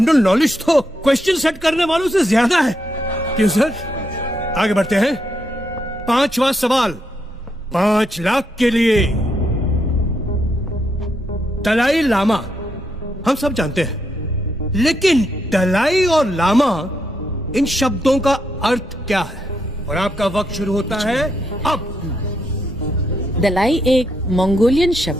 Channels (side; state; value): both; normal; correlation 0.79